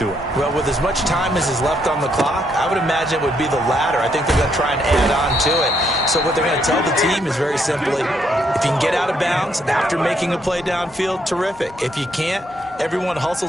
it. Well, with as much time as is left on the clock, I would imagine it would be the latter. I think they're going to try and add on to it. So what they're going to tell the team is very simply, if you can get out of bounds after making a play downfield, terrific. If you can't, everyone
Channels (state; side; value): normal; both; correlation 0.74